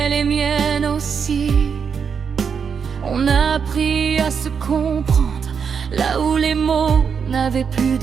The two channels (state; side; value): quieter; left; 6.5 dB